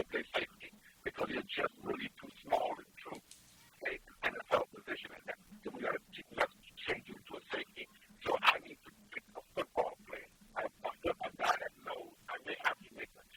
play safety because you're just really too small in truth to play an NFL position at that. So we got to change you into a safety. So I need to pick a football player, a guy that knows I may have to make an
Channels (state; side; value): identical; both; correlation 1.00